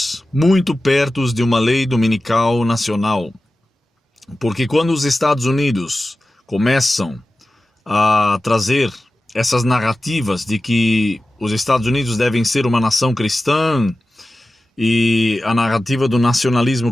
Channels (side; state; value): both; normal; correlation 0.94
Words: muito perto de uma lei dominical nacional. Porque quando os Estados Unidos começam a trazer essas narrativas de que os Estados Unidos devem ser uma nação cristã e a narrativa do